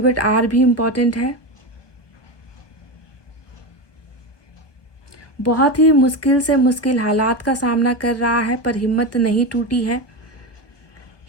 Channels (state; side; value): late; right; 1.2 ms